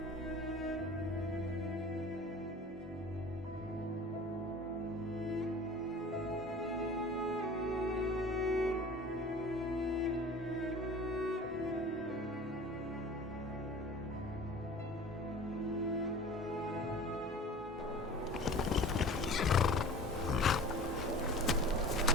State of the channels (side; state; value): both; normal; correlation 0.41